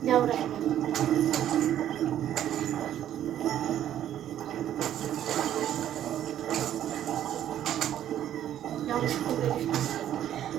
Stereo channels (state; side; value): quieter; left; 11.2 dB